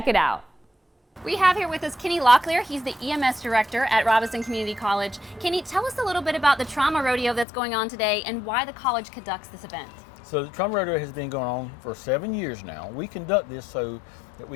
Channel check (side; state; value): right; drops out; at 7.5 s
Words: it out. We have here with us Kenny Locklear. He's the EMS director at Robeson Community College. Kenny, tell us a little bit about the Trauma Rodeo that's going on today and why the college conducts this event. So the Trauma Rodeo has been going on for 7 years now. We conduct this so that